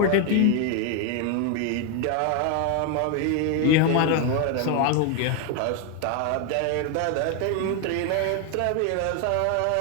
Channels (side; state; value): both; different; correlation 0.01